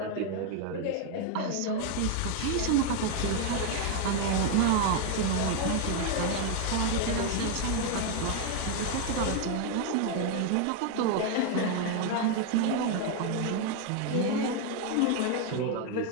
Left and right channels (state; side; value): different; both; correlation 0.01